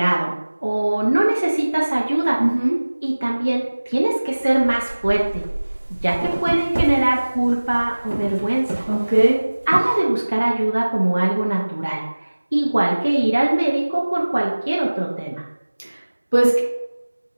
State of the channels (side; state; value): both; inverted; correlation -1.00